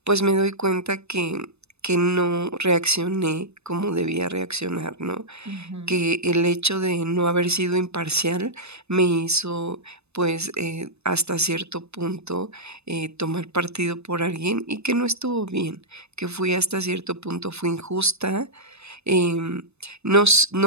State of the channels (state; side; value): late; left; 0.80 ms